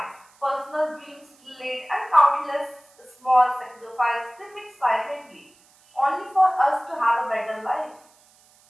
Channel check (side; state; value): right; noise; hiss, 30 dB below the sound